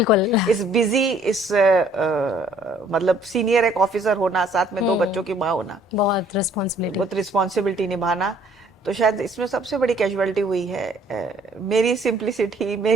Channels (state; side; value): normal; both; correlation 0.60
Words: इस बिजी, इस मतलब सीनियर एक ऑफिसर होना, साथ में 2 बच्चों की माँ होना, बहुत रिस्पॉन्सिबिलिटी निभाना, तो शायद इसमें सबसे बड़ी कैजुअलिटी हुई है मेरी सिंप्लिसिटी,